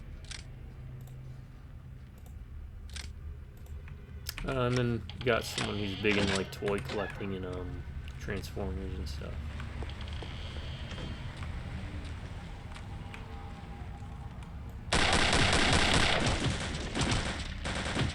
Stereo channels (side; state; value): both; identical; correlation 1.00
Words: And then you got someone who's big in like toy collecting and Transformers and stuff.